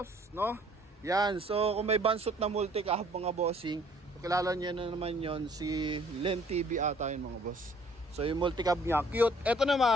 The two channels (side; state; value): both; normal; correlation 0.58